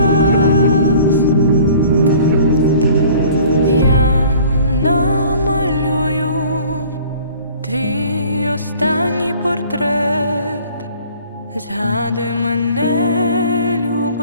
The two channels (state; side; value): inverted; both; correlation -0.50